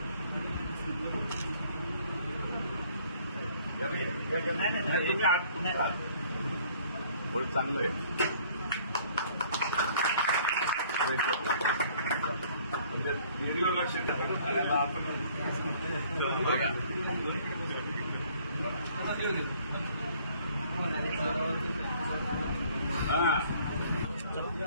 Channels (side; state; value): both; inverted; correlation -0.58